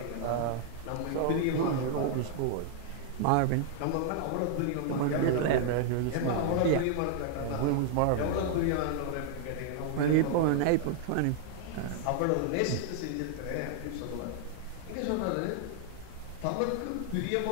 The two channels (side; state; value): both; different; correlation -0.01